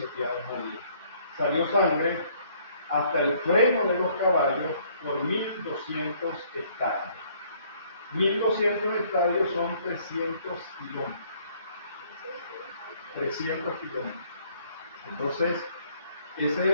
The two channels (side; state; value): both; inverted; correlation -0.63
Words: allí. Salió sangre hasta el freno de los caballos por 1200 estadios. 1200 estadios son 300 kilómetros. 300 kilómetros. Entonces, ese es